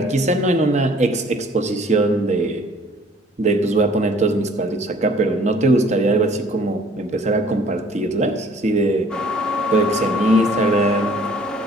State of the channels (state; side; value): normal; both; correlation 0.56